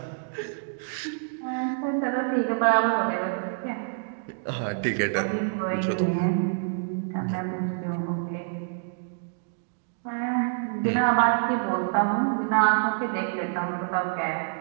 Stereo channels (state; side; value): silent; left; digital silence